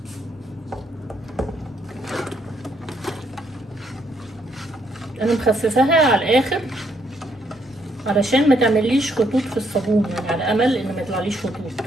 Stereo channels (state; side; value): normal; both; correlation 0.72